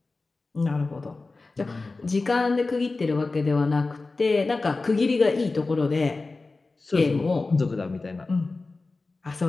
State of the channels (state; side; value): quieter; right; 3.6 dB